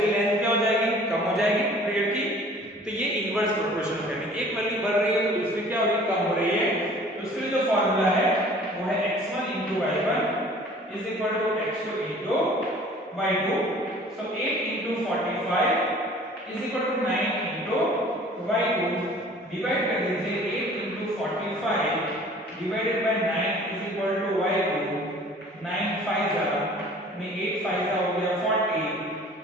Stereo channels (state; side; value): normal; both; correlation 0.49